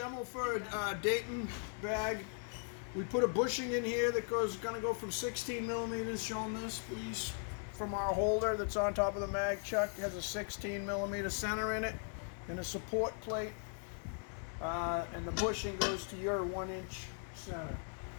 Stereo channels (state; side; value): silent; right; 52 dB below the other